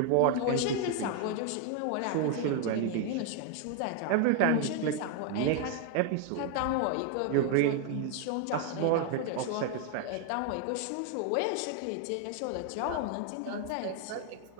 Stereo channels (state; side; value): different; both; correlation 0.00